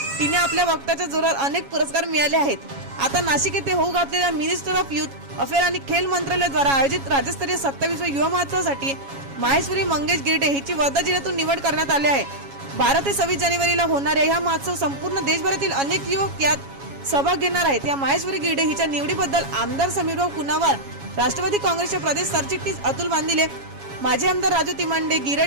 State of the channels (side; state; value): left; late; 7.2 ms